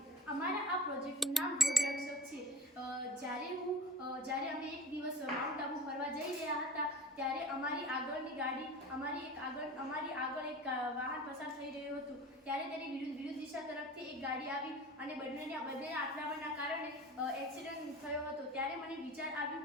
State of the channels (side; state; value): both; normal; correlation 0.38